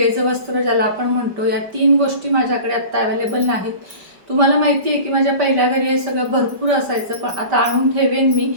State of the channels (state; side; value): late; left; 5.1 ms